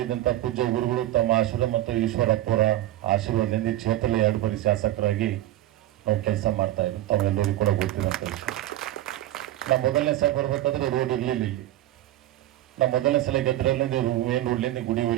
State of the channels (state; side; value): quieter; left; 14.6 dB